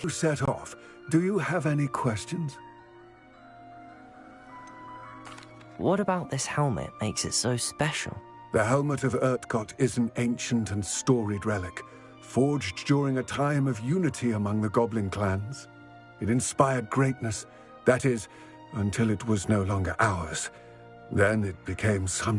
You set off. Do you have any questions? What about this helmet makes it so special? The helmet of Urtkot is an ancient and storied relic, forged during a time of unity among the goblin clans. It inspired greatness, that is, until it was no longer ours. Then it became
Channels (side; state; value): both; identical; correlation 1.00